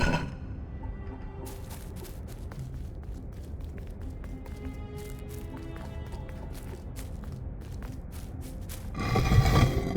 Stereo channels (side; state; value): both; identical; correlation 1.00